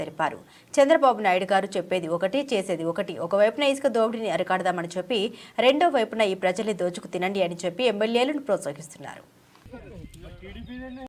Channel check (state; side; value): identical; both; correlation 1.00